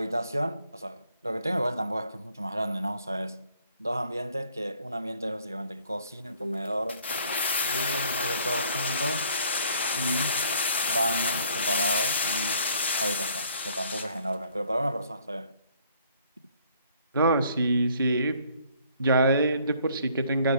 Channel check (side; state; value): both; inverted; correlation -0.60